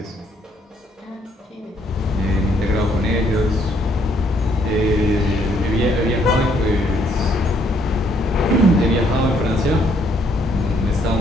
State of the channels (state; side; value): normal; both; correlation 0.68